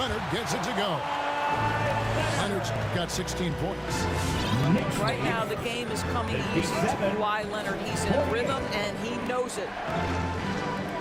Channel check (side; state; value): both; identical; correlation 1.00